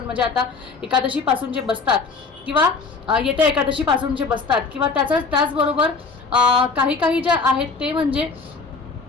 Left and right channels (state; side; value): quieter; right; 4.4 dB